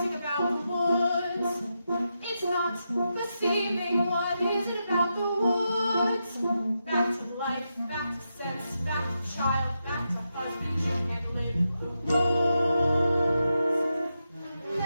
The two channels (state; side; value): inverted; both; correlation -0.86